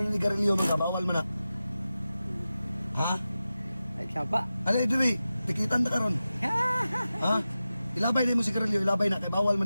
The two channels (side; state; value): both; inverted; correlation -0.93